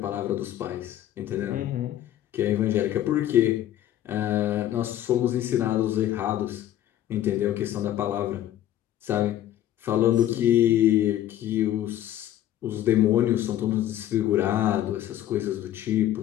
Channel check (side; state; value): right; quieter; 12.3 dB